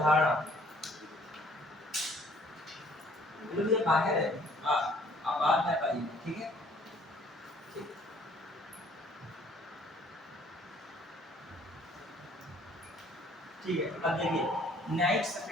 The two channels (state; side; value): normal; both; correlation 0.59